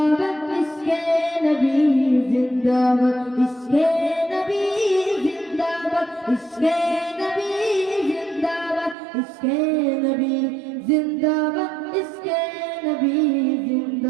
ইশকে নবী জিন্দাবাদ, ইশকে নবী জিন্দাবাদ, ইশকে নবী জিন্দাবাদ, ইশকে নবী জিন্দাবাদ, ইশকে নবী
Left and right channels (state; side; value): drops out; left; at 9.0 s